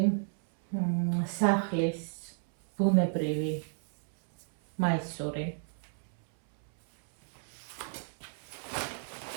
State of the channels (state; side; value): silent; left; 56 dB below the other